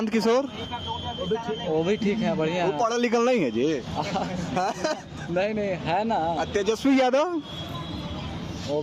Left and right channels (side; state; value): both; identical; correlation 1.00